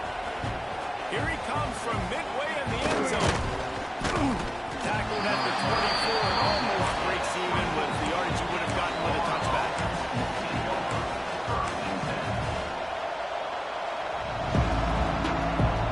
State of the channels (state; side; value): identical; both; correlation 1.00